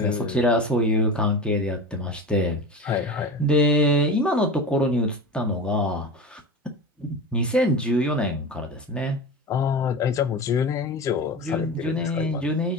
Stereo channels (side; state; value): both; normal; correlation 0.29